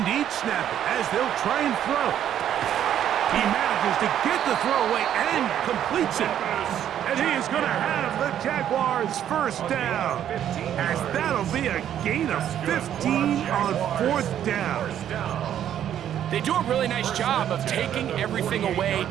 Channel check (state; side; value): quieter; left; 10.4 dB